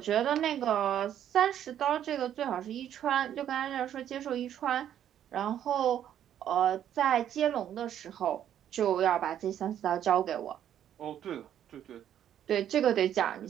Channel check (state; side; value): quieter; left; 10.4 dB